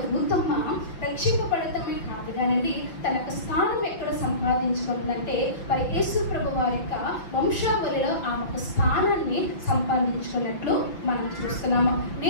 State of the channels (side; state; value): right; late; 5.8 ms